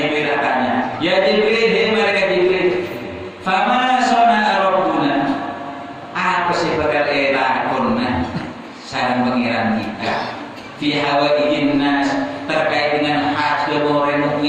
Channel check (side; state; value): both; identical; correlation 1.00